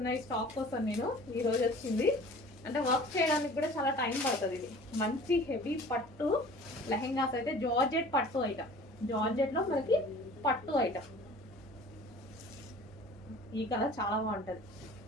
ఈ స్టాక్ కోసం నేను. ఈరోజు వచ్చింది, అంటే వర్క్ చేయడానికి కూడా చాలా టైం పడుతుంది. ఇది మంచి హెవీ పట్టు లెహెంగాస్ అయితే జార్జెట్ పట్టు ఐటమ్, జార్జెట్లో మనకి పట్టు ఐటమ్. ఈ కలర్ చాలా బాగుంటుంది.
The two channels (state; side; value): normal; both; correlation 0.45